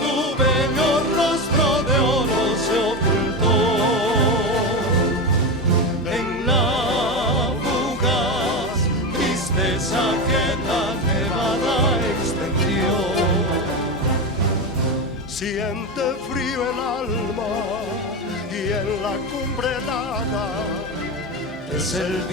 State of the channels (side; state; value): both; normal; correlation 0.18